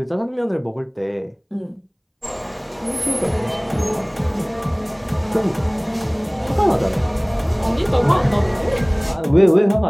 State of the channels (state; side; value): identical; both; correlation 1.00